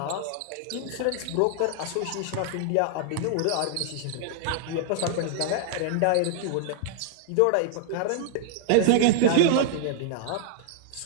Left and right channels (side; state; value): both; different; correlation -0.01